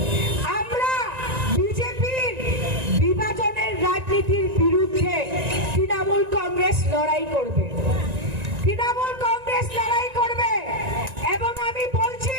আমরা বিজেপির বিভাজনের রাজনীতির বিরুদ্ধে তৃণমূল কংগ্রেস লড়াই করবে, তৃণমূল কংগ্রেস লড়াই করবে। এবং আমি বলছি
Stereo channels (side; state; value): left; late; 1.9 ms